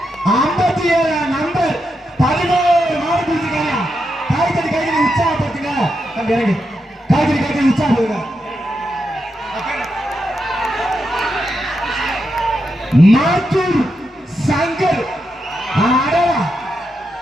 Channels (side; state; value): both; normal; correlation 0.85